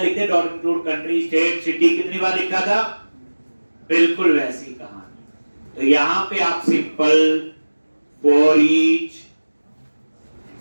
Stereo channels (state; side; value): inverted; both; correlation -1.00